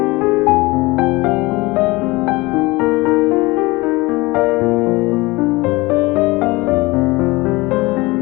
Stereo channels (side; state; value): right; quieter; 22.6 dB